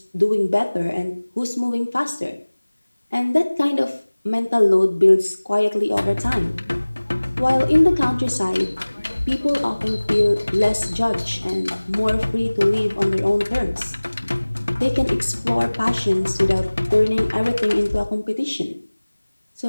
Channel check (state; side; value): inverted; both; correlation -1.00